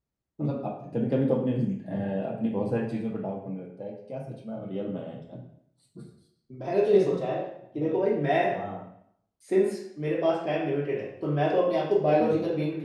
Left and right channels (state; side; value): identical; both; correlation 1.00